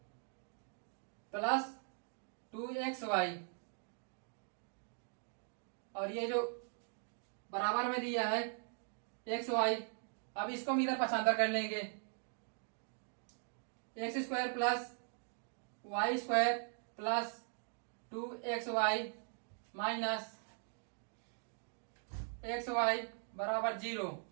plus 2xy, और ये जो बराबर में दिया है एक्स वाई, अब इसको हम इधर पक्षांतर कर लेंगे, x square plus y square plus 2xy minus x y बराबर 0।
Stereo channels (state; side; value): silent; left; 51 dB below the other